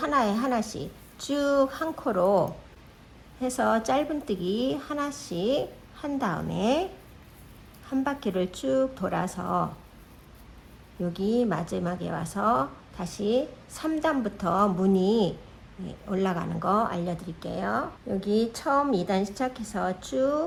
하나씩 쭉 한 코로 해서 짧은뜨기 하나씩 한 다음에 한 바퀴를 쭉 돌아서 여기 마지막에 와서 다시 3단부터 무늬 올라가는 거 알려드릴게요. 여기 처음 2단 시작해서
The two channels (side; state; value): both; identical; correlation 1.00